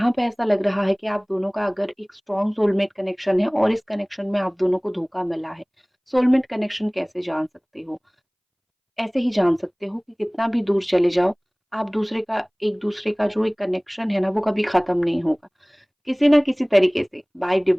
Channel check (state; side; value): identical; both; correlation 1.00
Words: पे ऐसा लग रहा है कि आप दोनों का अगर एक स्ट्रॉन्ग सोलमेट कनेक्शन है और इस कनेक्शन में आप दोनों को धोखा मिला है। सोलमेट कनेक्शन कैसे जान सकते हो? ऐसे ही जान सकते हो कि कितना भी दूर चले जाओ, आप एक-दूसरे का जो एक कनेक्शन है ना, वो कभी ख़त्म नहीं होगा। किसी न किसी तरीके से बाय